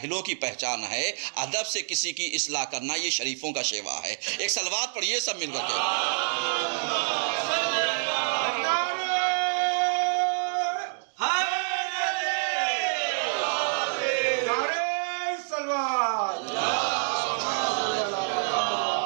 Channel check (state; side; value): silent; left; digital silence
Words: کی پہچان ہے. ادب سے کسی کی اصلاح کرنا یہ شریفوں کا شیوا ہے. ایک صلوات پڑھیے سب مل کر کے.